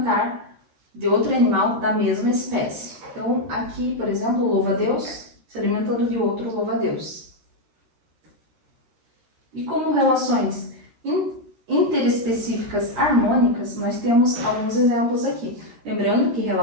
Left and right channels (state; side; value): late; left; 13 ms